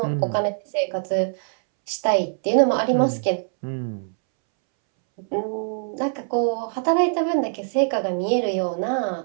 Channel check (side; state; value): left; silent; 63 dB below the other